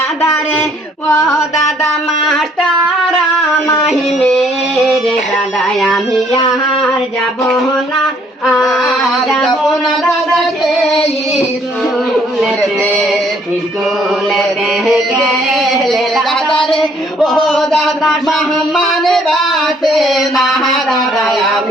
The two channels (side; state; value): both; normal; correlation 0.63